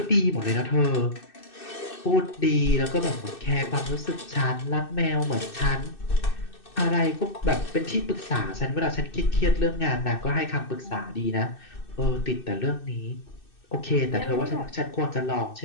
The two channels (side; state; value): right; late; 2.6 ms